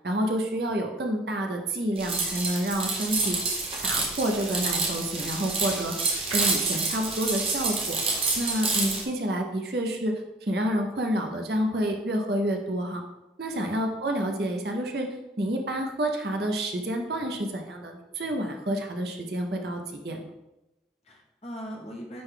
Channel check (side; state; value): both; normal; correlation 0.51